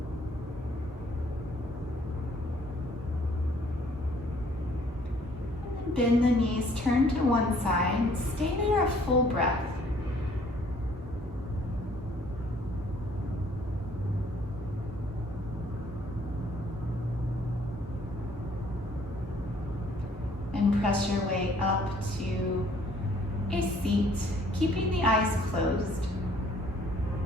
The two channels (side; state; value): both; normal; correlation 0.61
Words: Bend the knees, turn to one side, stay there a full breath. And press your way up to a seat, keeping the eyes closed.